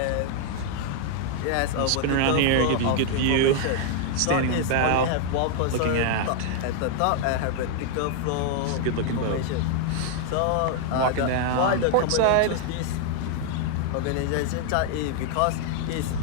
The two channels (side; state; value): both; different; correlation 0.00